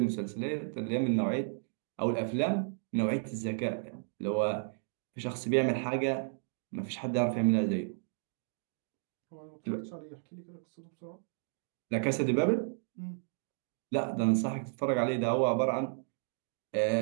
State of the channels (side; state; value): left; silent; digital silence